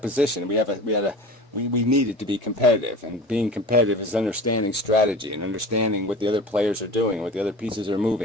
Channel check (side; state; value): both; normal; correlation 0.37